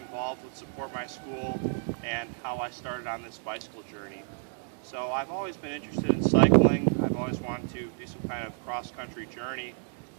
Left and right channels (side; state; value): left; silent; digital silence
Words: involved with Support My School and how I started on this bicycle journey. So I've always been interested in cycling. I've always wanted to do some kind of cross-country journey.